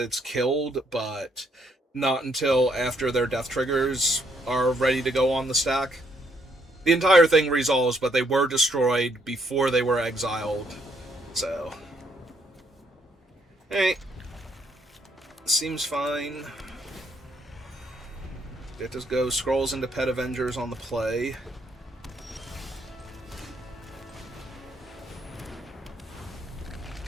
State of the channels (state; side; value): normal; both; correlation 0.71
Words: killed, but not until after their death triggers are ready to go on the stack. The entire thing resolves, but they were destroyed before they were exiled. So, hey, seems fine. It just goes scrolls into Pet Avengers on the play.